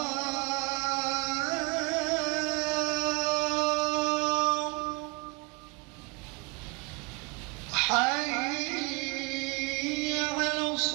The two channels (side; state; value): left; quieter; 29.2 dB